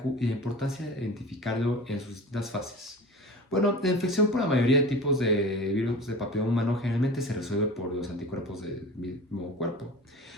y la importancia de identificarlo en sus distintas fases. Bueno, la infección por la mayoría de tipos de virus de papiloma humano generalmente se resuelve por los anticuerpos del mismo cuerpo.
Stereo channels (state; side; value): normal; both; correlation 0.36